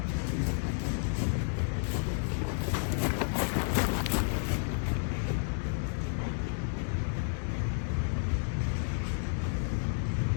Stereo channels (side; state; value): right; silent; digital silence